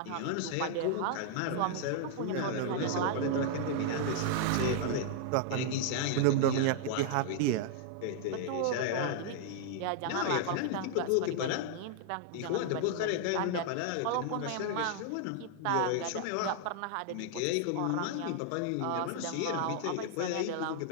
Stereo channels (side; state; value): both; different; correlation -0.01